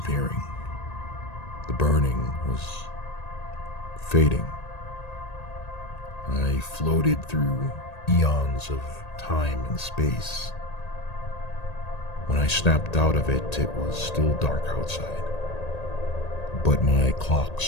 The burning was fading. I floated through eons of time and space. When I snapped out of it, it was still dark outside. But my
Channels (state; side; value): late; right; 1.8 ms